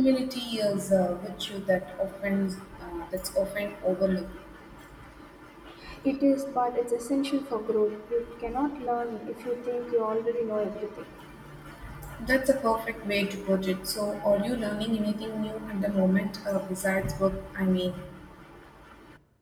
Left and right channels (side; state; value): both; identical; correlation 1.00